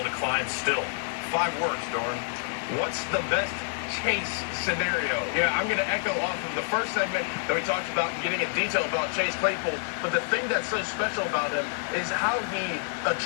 to climb still. 5 words, Doran. What's the best Chase scenario? Yeah, I'm going to echo off of the first segment that we talked about, getting in detail about Chase Claypool, but the thing that's so special about him is how he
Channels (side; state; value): right; silent; 59 dB below the other